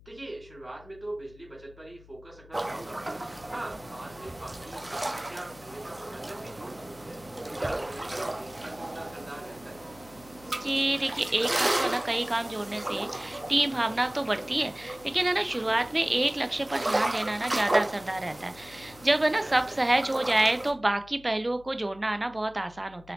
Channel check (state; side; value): noise; left; hum, 23 dB below the sound